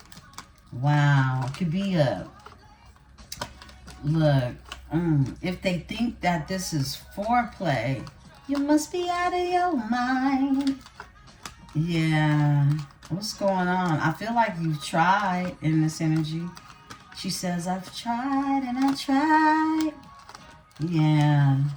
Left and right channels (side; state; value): both; identical; correlation 1.00